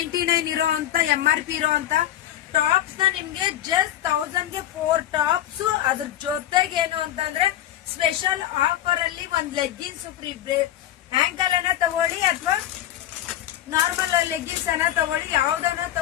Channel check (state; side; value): quieter; right; 12.4 dB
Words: ಇರೋ ಅಂತ MRP ಇರೋ ಅಂತ ಟಾಪ್ಸ್ ನ ನಿಮ್ಗೆ ಜಸ್ಟ್ 1000 ಗೆ 4 ಟಾಪ್ಸ್. ಅದ್ರ ಜೊತೆಗೆ ಏನು ಅಂತಂದ್ರೆ ಸ್ಪೆಷಲ್ ಆಫರ್ ಅಲ್ಲಿ ಒಂದ್ ಲೆಗ್ಗಿನ್ಸ್ ಫ್ರೀ. ಆಂಕಲ್ ಅನ್ನ ತಗೊಳ್ಳಿ ಅಥವಾ ನಾರ್ಮಲ್ ಲೆಗ್ಗಿನ್ಸ್ ಅನ್ನ ತಗೊಳ್ಳಿ, ಯಾವ್ದನ್ನ